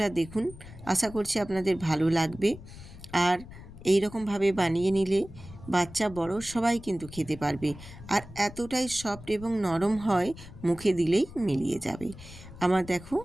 দেখুন, আশা করছি আপনাদের ভালো লাগবে। আর এই রকমভাবে বানিয়ে নিলে বাচ্চা বড় সবাই কিন্তু খেতে পারবে। আর এতটাই সফট এবং নরম হয়, মুখে দিলেই মিলিয়ে যাবে। আমার দেখো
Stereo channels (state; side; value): noise; left; rumble, 16 dB below the sound